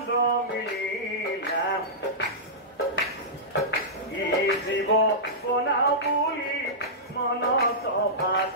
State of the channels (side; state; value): both; normal; correlation -0.15